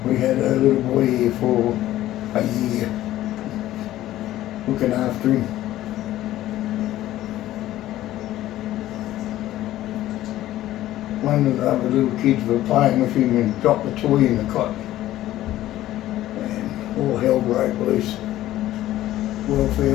We had a little boy here for a year, looking after him. One of the other little kids were playing with him and dropped the toy in the cot. And all hell broke loose.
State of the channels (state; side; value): quieter; right; 14.4 dB